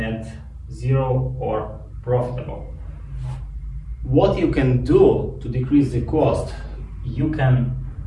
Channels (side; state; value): both; identical; correlation 1.00